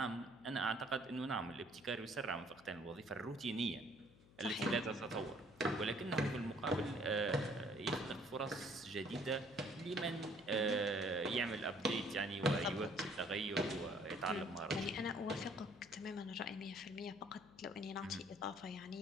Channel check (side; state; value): left; noise; hum, 24 dB below the sound